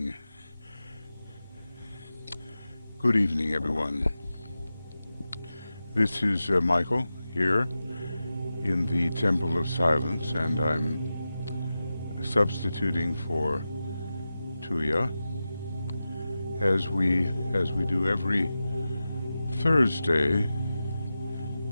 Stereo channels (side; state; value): both; inverted; correlation -0.93